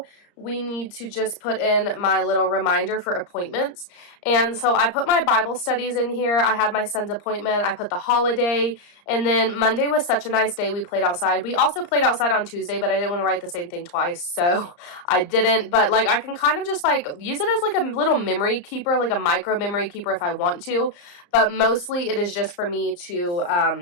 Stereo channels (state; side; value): late; right; 34 ms